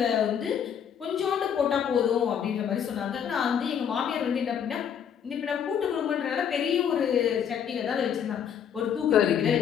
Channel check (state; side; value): quieter; right; 8.3 dB